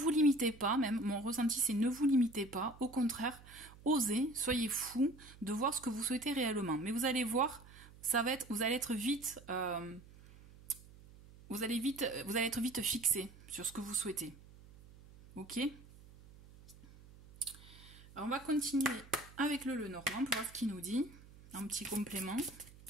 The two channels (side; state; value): right; noise; hum, 21 dB below the sound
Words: limitez pas, même mon ressenti, c'est ne vous limitez pas. Au contraire, osez, soyez fous de voir ce que vous souhaitez réellement. Mais vous allez voir, vous allez être vite fixé sur ce que vous souhaitez. Ok? Alors, on va continuer avec le Lenormand pour voir ce qu'il nous dit. Un petit complément.